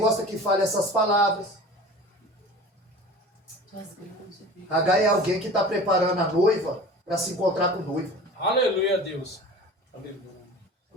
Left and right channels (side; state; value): both; normal; correlation 0.39